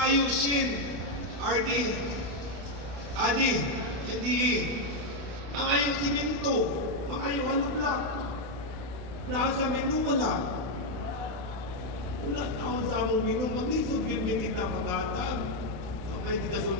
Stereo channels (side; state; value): left; late; 32 ms